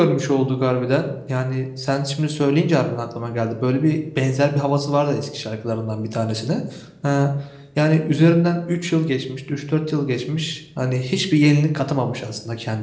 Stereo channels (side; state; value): both; identical; correlation 1.00